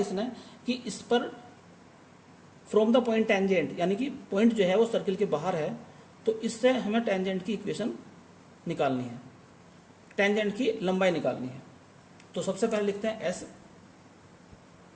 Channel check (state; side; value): identical; both; correlation 1.00